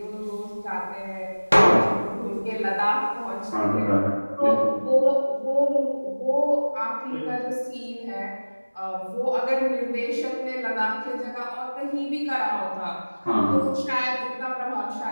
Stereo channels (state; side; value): inverted; both; correlation -1.00